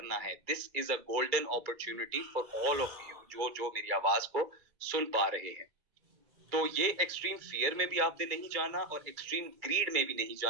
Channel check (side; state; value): left; late; 2.3 ms